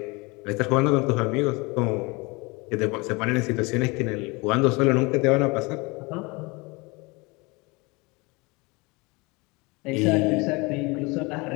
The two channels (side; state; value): right; quieter; 26.2 dB